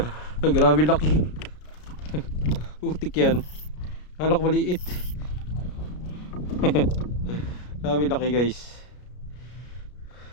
Grabe laki. Utik yan. Akala ko maliit. Grabe laki guys.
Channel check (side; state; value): right; late; 33 ms